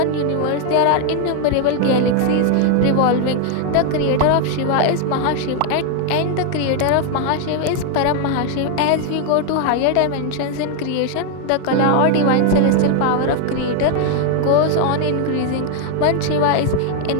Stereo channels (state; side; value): different; both; correlation 0.00